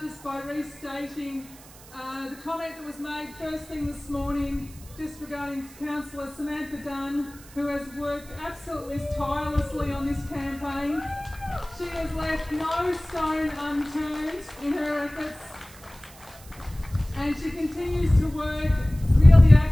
just by restating the comment that was made first thing this morning just regarding Councillor Samantha Dunn, who has worked absolutely tirelessly on this campaign. She has left no stone unturned in her efforts, and she continues to work really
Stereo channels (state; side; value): noise; right; hiss, 21 dB below the sound